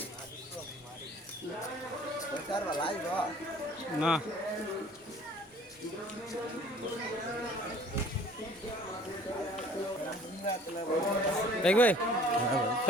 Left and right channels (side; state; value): both; normal; correlation 0.52